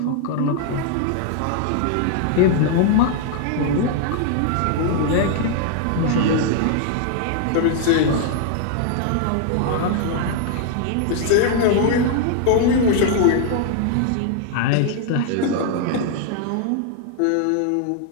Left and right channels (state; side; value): different; both; correlation 0.00